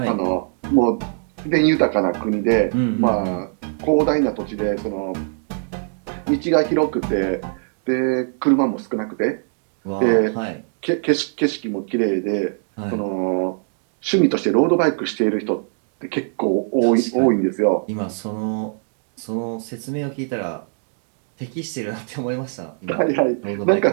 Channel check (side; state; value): left; silent; digital silence